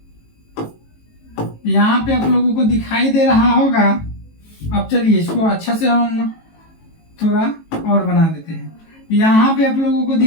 पे आप लोगों को दिखाई दे रहा होगा। अब चलिए इसको अच्छा से हम थोड़ा और बना देते हैं। यहाँ पे आप लोगों को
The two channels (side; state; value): right; late; 18 ms